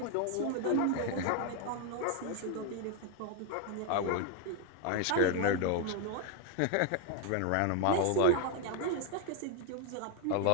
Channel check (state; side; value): different; both; correlation 0.00